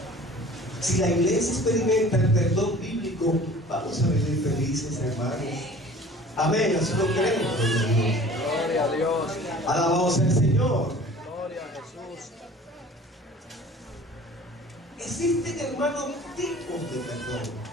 Si la iglesia experimenta el perdón bíblico, vamos a vivir felices, hermanos. Amén, así lo creemos. Gloria a Dios. Alabado sea el Señor. Gloria a Jesús. Existen, hermanos, tipos de perdón,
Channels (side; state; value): both; normal; correlation 0.46